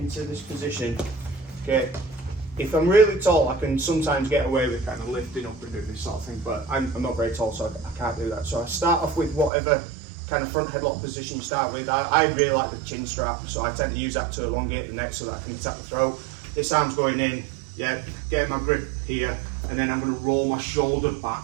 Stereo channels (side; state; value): left; drops out; at 9.5 s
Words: this position, okay, if I'm really tall, I can sometimes get away with kind of lifting up and doing this sort of thing, but I'm not very tall, so I can't do that. So I start off with whatever kind of front headlock position you start with. I really like the chin strap, so I tend to use that to elongate the neck so that I can attack the throat. This arm's going in, yeah, getting my grip here, and then I'm going to roll my shoulder back